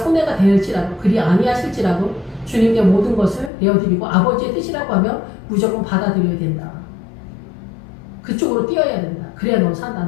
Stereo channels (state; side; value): drops out; right; at 3.5 s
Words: 될지라도 그리 아니하실지라도 주님께 모든 것을 내어드리고 아버지의 뜻이라고 하면 무조건 받아들여야 된다. 그쪽으로 뛰어야 된다. 그래야 너 산다.